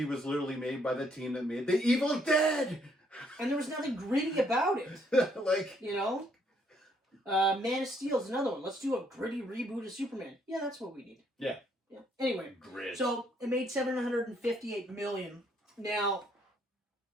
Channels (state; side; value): normal; both; correlation 0.69